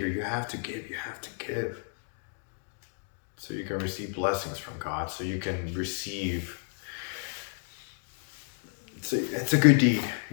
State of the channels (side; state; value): right; silent; 57 dB below the other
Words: You have to give. So you can receive blessings from God. So you can receive. It's a good deed.